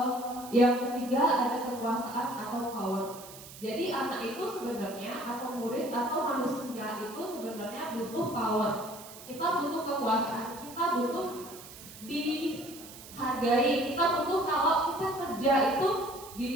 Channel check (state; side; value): noise; right; hiss, 16 dB below the sound